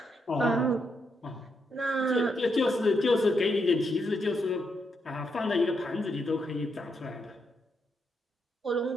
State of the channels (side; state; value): both; normal; correlation 0.80